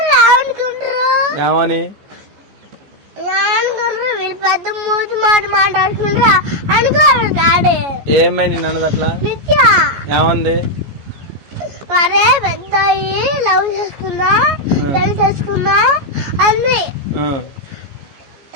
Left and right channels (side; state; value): left; late; 14 ms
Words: ఏమనుకుంటారు ఏమని వీళ్ళు పెద్ద మూతి మాట మాట్లాడుకుంటారా అనుకోరు డాడీ. ఏమై నిన్ను అన్నది అట్లా నిత్యా ఏమంది? అరే పెద్ద లవ్ చేసుకున్నా పెళ్లి చేసుకున్నా అన్ని